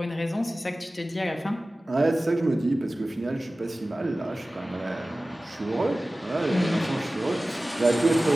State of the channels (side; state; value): both; normal; correlation 0.97